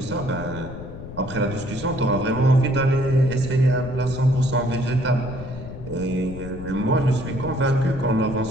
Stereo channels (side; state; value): left; noise; rumble, 11 dB below the sound